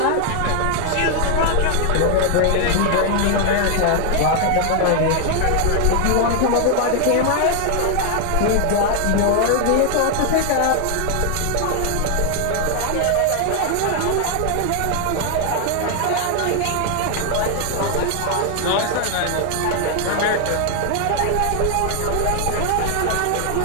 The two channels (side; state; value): both; different; correlation 0.00